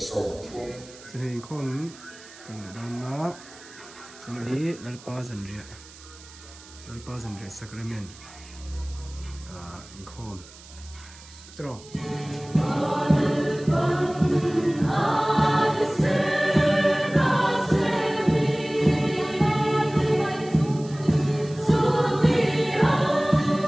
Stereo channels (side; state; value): right; noise; hiss, 20 dB below the sound